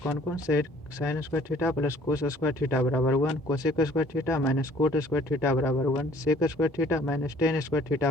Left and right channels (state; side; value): normal; both; correlation 0.56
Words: कौन से, sine square theta plus cos square theta बराबर 1, cosec square theta minus cot square theta बराबर 1, sec square theta minus tan square